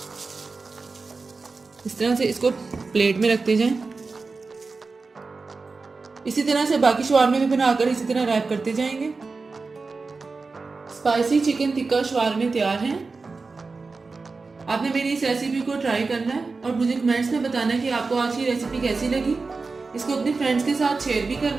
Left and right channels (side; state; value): left; quieter; 4.1 dB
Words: इस तरह से इसको प्लेट में रखते जाएं। इसी तरह से बाकी शवारमे भी बनाकर इसी तरह रैप करते जाएंगे। स्पाइसी चिकन टिक्का शवारमे तैयार हैं। आपने मेरी इस रेसिपी को ट्राई करना है और मुझे कमेंट्स में बताना है कि आपको आज की रेसिपी कैसी लगी। इसको अपने फ्रेंड्स के साथ शेयर भी करना